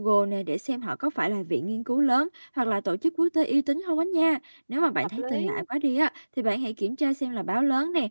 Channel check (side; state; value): both; inverted; correlation -1.00